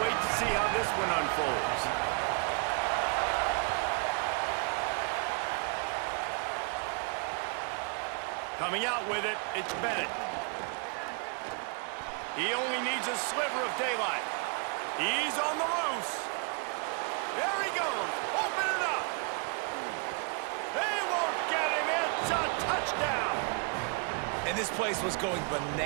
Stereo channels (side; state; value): left; quieter; 38.0 dB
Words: wait to see how this one unfolds. Coming out with it, it's Bennett. He only needs a sliver of daylight. He's on the loose. There he goes. Open it up. They won't get him. It's a touchdown. And this place was going